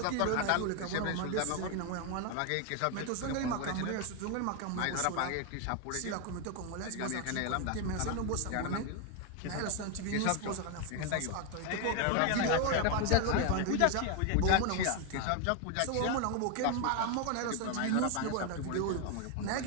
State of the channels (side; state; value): both; different; correlation 0.01